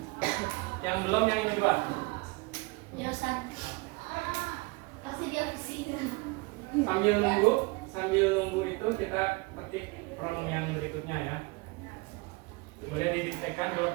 Yang belum yang ini Pak. Yosan. Pasti dia pusing. Sambil nunggu itu kita petik prompt yang berikutnya ya. Boleh didiktekan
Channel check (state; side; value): quieter; left; 26.0 dB